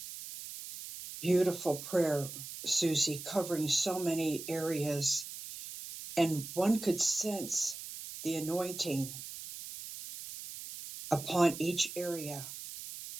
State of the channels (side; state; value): right; noise; hiss, 10 dB below the sound